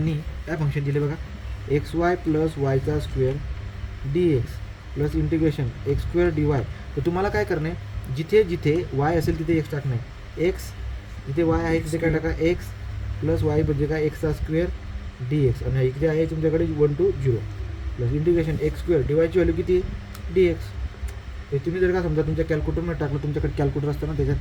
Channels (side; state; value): both; identical; correlation 1.00